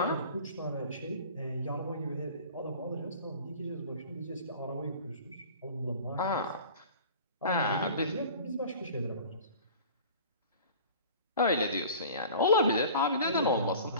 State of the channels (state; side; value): inverted; both; correlation -0.43